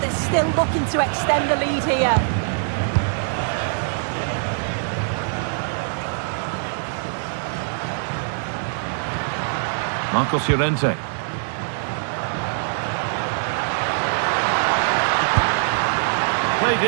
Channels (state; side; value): silent; left; 64 dB below the other